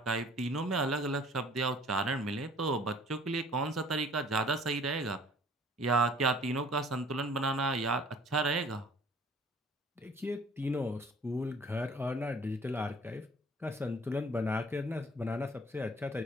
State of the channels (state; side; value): normal; both; correlation 0.53